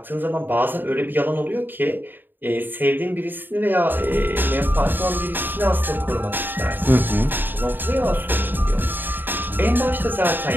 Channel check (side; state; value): left; late; 0.093 ms